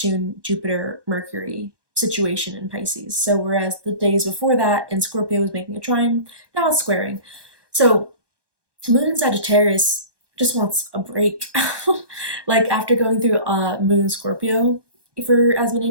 Jupiter, Mercury situation in Pisces. So whereas the days before that in Scorpio was making a trine, now it's squaring. So Moon in Sagittarius just wants a break. Like after going through Moon in Scorpio for as many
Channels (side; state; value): left; late; 1.2 ms